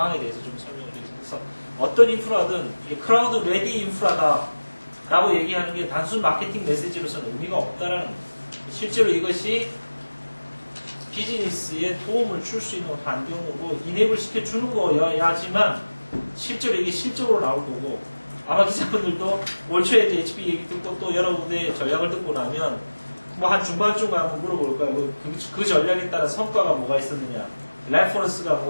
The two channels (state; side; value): inverted; both; correlation -1.00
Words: 대해서 좀 설명을 드리겠습니다. 그래서 어떤 인프라든 이게 크라우드 레디 인프라다 라고 얘기하는 게 단순 마케팅 메시지로서는 의미가 없다라는 겁니다. 실제로 이것이 비즈니스에 도움을 줄 수 있는 환경으로 이네이블 시켜주는 거여야지만 실제로 이게 실적으로 나올 거고 아마 기자분들도 올 초에 이제 HP 얘기 듣고 또 여러분의 전략을 듣고 나면 한 중반쯤 가면 물어볼 거예요. 그 전략에 따라 성과가 뭐가 있었느냐 레퍼런스가